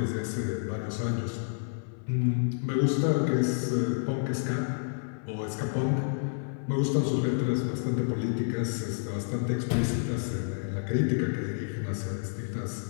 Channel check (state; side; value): silent; right; 57 dB below the other